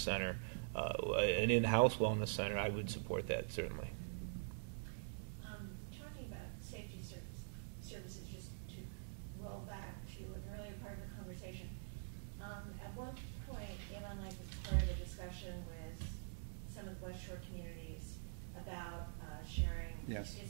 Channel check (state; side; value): silent; left; digital silence